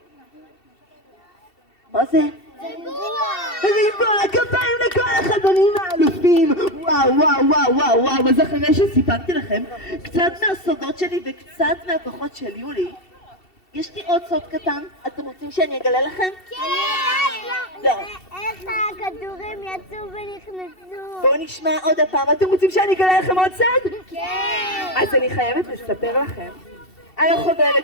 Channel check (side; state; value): right; late; 2.7 ms